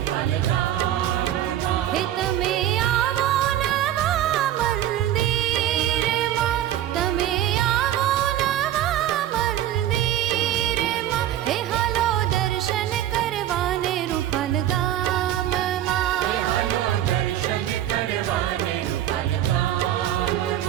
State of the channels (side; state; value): left; quieter; 12.1 dB